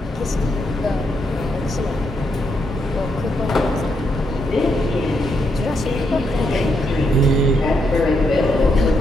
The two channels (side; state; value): both; normal; correlation 0.79